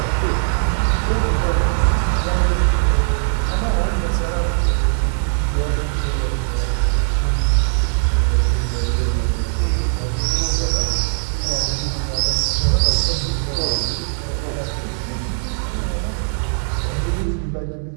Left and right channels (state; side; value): silent; left; 61 dB below the other